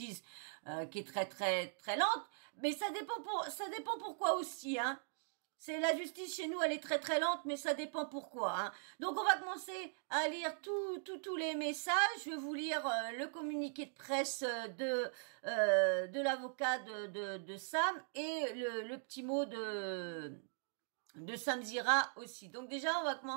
qui est très très très lente, mais ça dépend pourquoi aussi, hein. C'est la justice chez nous, elle est très très lente, mais ça dépend pourquoi, hein. Donc on va commencer à lire tous les messages. Je vais vous lire le communiqué de presse de l'avocat de Sam et le petit mot de Sam Zira aussi. Donc déjà on va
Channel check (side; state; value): left; silent; digital silence